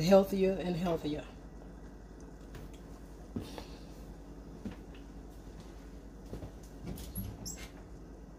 healthier and healthier.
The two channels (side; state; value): both; identical; correlation 1.00